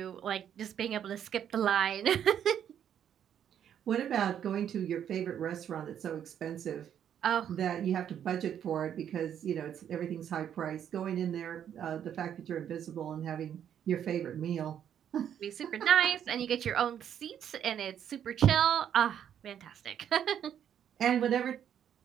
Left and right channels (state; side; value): quieter; left; 9.4 dB